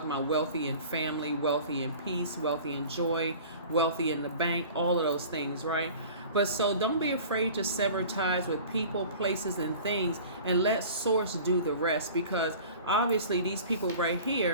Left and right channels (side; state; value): both; inverted; correlation -0.42